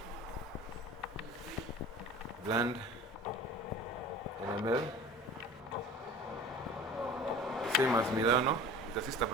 bland NML, same as Milano. It's a sister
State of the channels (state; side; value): normal; both; correlation 0.40